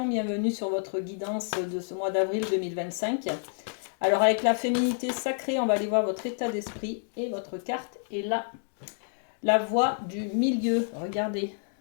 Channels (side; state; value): right; silent; digital silence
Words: bienvenue sur votre guidance de ce mois d'avril 2025. Alors avec la féminité sacrée, on va aller voir votre état d'esprit et votre carte est là. La voie du milieu, regardez,